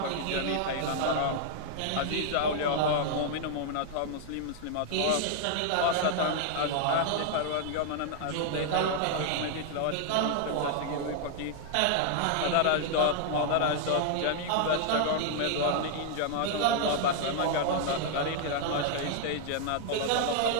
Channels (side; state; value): both; different; correlation -0.01